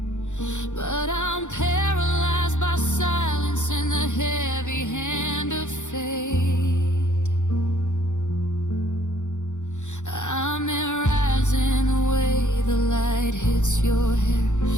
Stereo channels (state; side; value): late; right; 0.85 ms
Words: but I'm paralyzed by silence and the heavy hand of fate. I'm rising away, the light hits your hair.